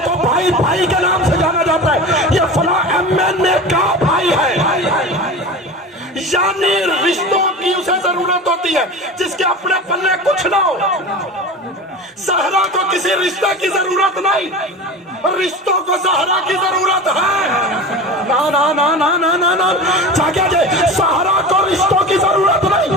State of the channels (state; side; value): normal; both; correlation 0.31